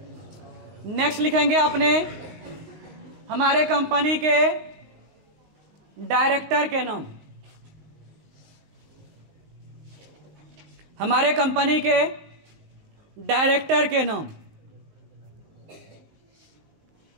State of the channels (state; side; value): late; left; 19 ms